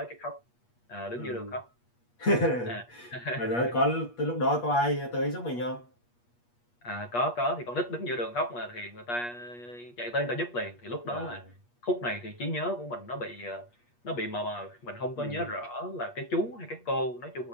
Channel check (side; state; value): right; late; 8.4 ms